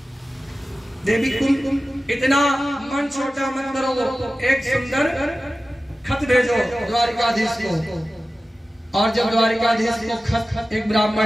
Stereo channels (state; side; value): normal; both; correlation 0.95